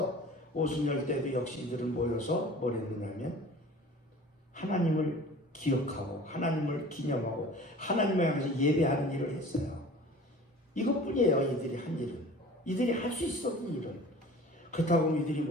오순절 때도 역시 이들은 모여서 뭘 했느냐면 하나님을 기억하고 하나님을 기념하고 하나님을 향해서 예배하는 일을 했어요. 이것뿐이에요. 이들이 한 일은. 이들이 할 수 있었던 일은. 그렇다고 이들이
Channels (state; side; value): normal; both; correlation 0.43